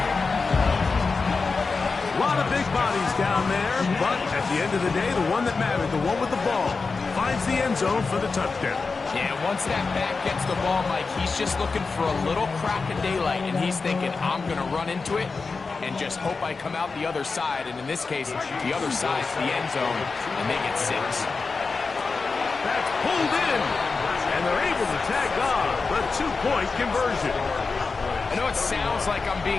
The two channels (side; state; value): right; quieter; 4.4 dB